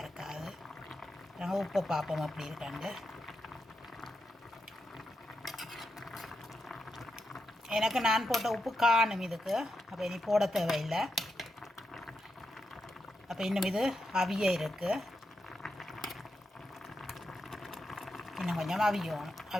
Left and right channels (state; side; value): normal; both; correlation 0.86